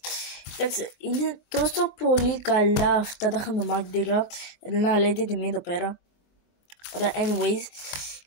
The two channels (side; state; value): right; late; 23 ms